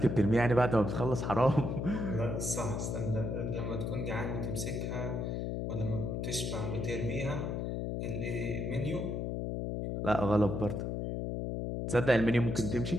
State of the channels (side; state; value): left; noise; hum, 2 dB below the sound